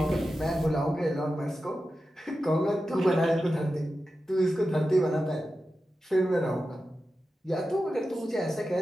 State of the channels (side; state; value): both; normal; correlation 0.92